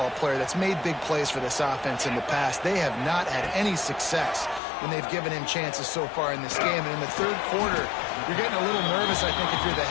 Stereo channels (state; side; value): drops out; right; at 4.6 s